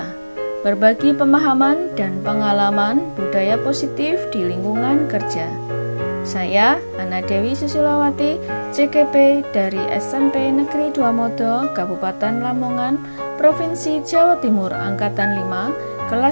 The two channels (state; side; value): inverted; both; correlation -1.00